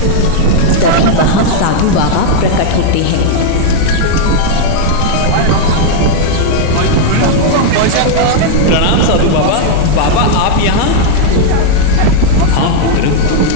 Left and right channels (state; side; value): different; both; correlation -0.01